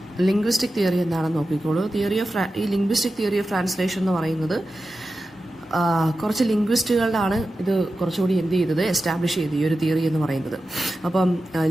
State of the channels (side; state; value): both; normal; correlation 0.92